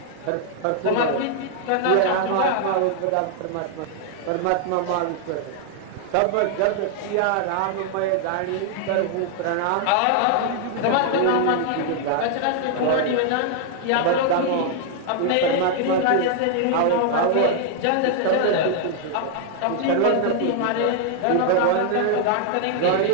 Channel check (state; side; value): different; both; correlation -0.01